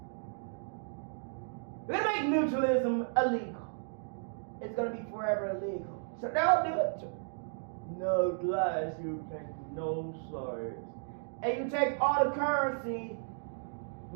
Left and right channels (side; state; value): left; silent; digital silence